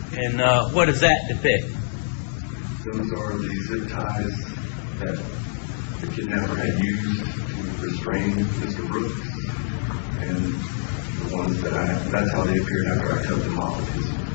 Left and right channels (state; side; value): silent; right; digital silence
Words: And what does that depict? Those are the zip ties that the kidnapper had used to restrain Mr. Brooks, and the ones that's how they appeared after I cut them off of his